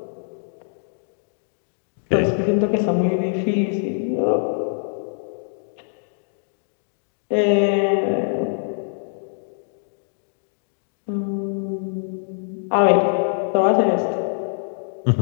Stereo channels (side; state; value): right; silent; digital silence